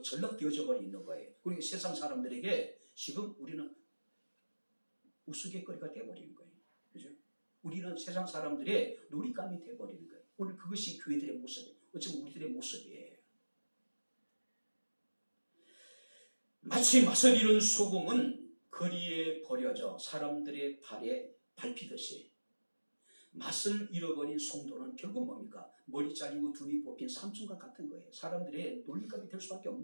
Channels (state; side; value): inverted; both; correlation -1.00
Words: 전락되어져 버려 있는 거예요. 그리고 세상 사람들에게 지금 우리는 우스갯거리가 되어버리는 거예요. 그죠? 우리는 세상 사람들의 놀잇감이 되어버리는 거예요. 오늘 그것이 교회들의 모습이에요. 어쩌면 우리들의 모습이에요. 마치 맛을 잃은 소금은 거리에 버려져 사람들의 발에 밟히듯이 맛을 잃어버린 성도는 결국 뭡니까? 머리 잘리고 눈이 뽑힌 삼손과 같은 거예요. 사람들의 놀림감이 될 수밖에